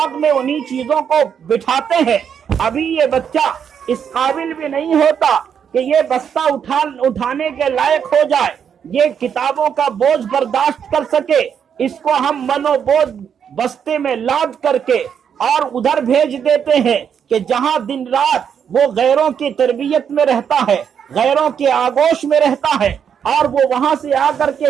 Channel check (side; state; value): left; quieter; 7.8 dB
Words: میں انہی چیزوں کو بٹھاتے ہیں۔ ابھی یہ بچہ اس قابل بھی نہیں ہوتا کہ یہ بستہ اٹھانے کے لائق ہو جائے، یہ کتابوں کا بوجھ برداشت کر سکے۔ اس کو ہم منو بوجھ بستے میں لاد کر کے اور ادھر بھیج دیتے ہیں کہ جہاں دن رات وہ غیروں کی تربیت میں رہتا ہے، غیروں کے آغوش میں رہتا ہے، اور وہ وہاں سے آ کر